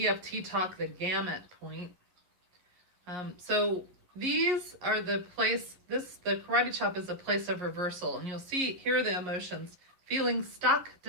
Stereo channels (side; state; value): left; late; 11 ms